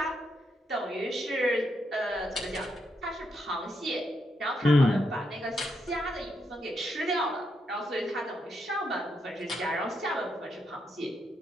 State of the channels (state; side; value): normal; both; correlation 0.80